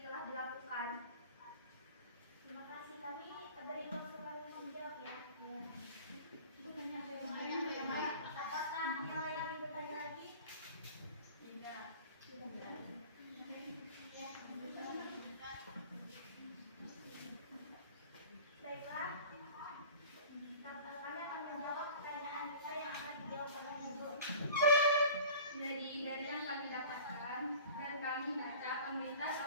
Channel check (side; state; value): both; inverted; correlation -0.42